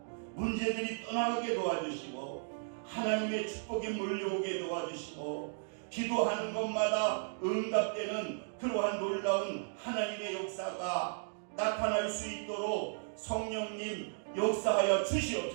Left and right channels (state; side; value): silent; left; digital silence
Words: 문제들이 떠나가게 도와주시고 하나님의 축복이 몰려오게 도와주시고 기도하는 것마다 응답되는 그러한 놀라운 하나님의 역사가 나타날 수 있도록 성령님 역사하여